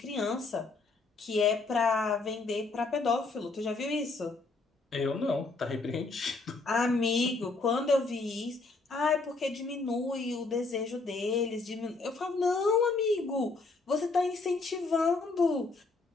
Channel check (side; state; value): right; quieter; 3.7 dB